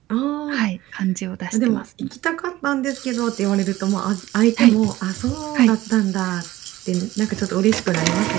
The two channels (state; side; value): quieter; left; 16.6 dB